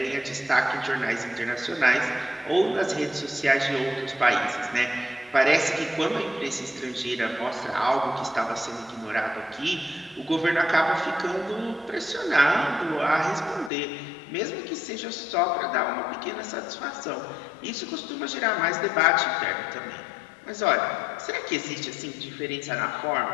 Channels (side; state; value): right; drops out; at 13.7 s